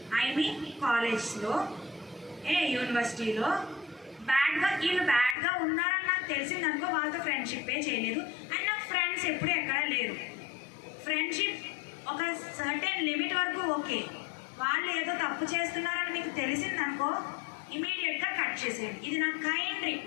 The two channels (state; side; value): drops out; right; at 5.4 s